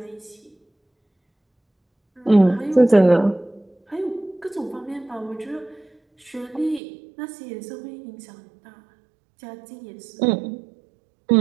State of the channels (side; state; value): left; drops out; at 6.8 s